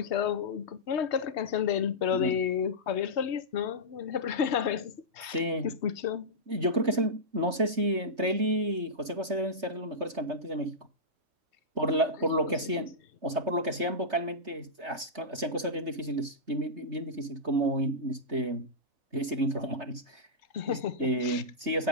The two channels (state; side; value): late; left; 3.3 ms